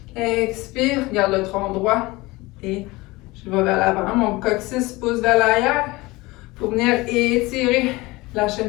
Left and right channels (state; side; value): quieter; right; 21.7 dB